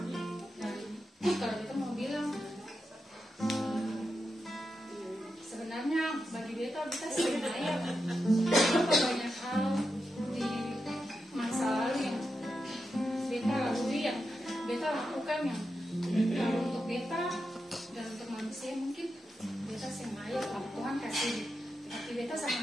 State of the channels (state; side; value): normal; both; correlation 0.88